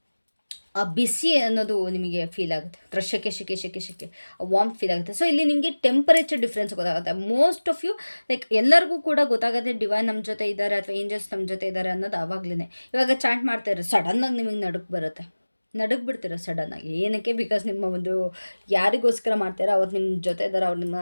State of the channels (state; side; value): inverted; both; correlation -1.00